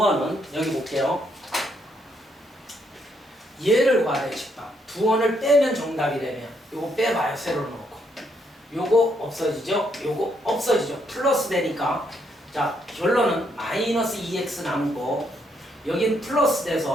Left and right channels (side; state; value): both; normal; correlation 0.74